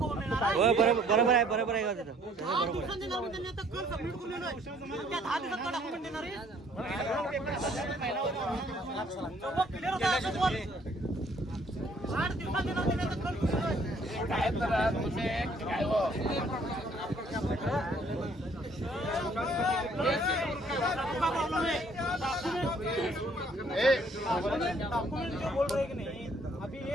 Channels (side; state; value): both; normal; correlation 0.62